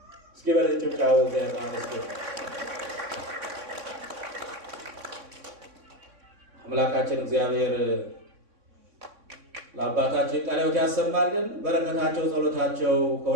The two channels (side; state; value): left; late; 3.6 ms